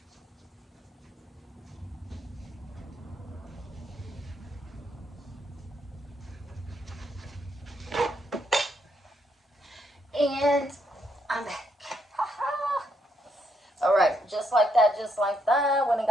And I'm back. Alright, just like that, just like that. When I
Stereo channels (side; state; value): both; normal; correlation 0.76